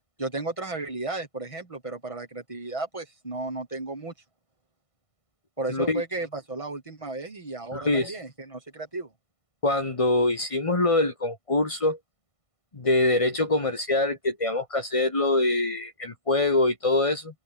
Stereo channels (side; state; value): right; late; 1.5 ms